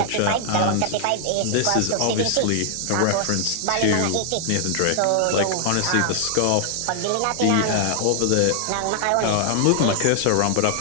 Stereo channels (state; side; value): different; both; correlation 0.00